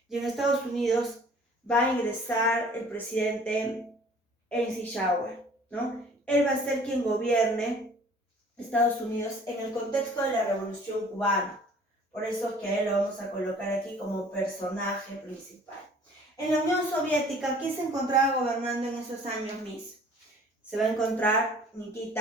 y en Estados Unidos va a ingresar el presidente Eisenhower, ¿no? Él va a ser quien gobierne Estados Unidos en el contexto de la Revolución Cubana. Por eso es que a él lo vamos a colocar aquí como personaje principal. En la Unión Soviética, ¿quién se encontraba gobernando en esos años, Miss? Se va a encontrar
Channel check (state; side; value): normal; both; correlation 0.52